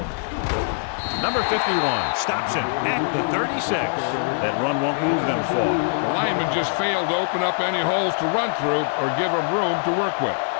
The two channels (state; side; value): silent; right; digital silence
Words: Number 51 stops him at the 36. That run won't move them far. The lineman just failed to open up any holes to run through or give him room to work with.